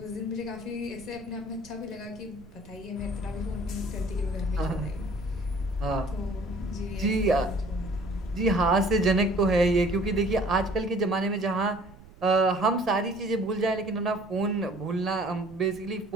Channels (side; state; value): right; noise; rumble, 21 dB below the sound